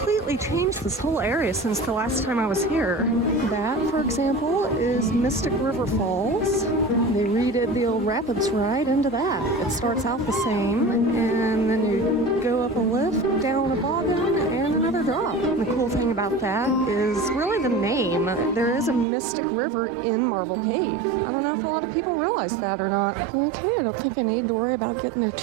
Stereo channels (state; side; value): drops out; left; at 19.1 s